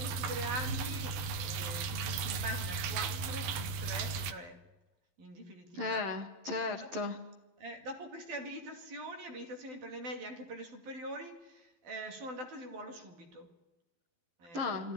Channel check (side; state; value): left; late; 12 ms